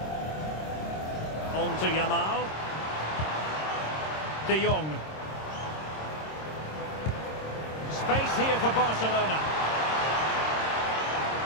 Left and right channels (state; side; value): late; right; 26 ms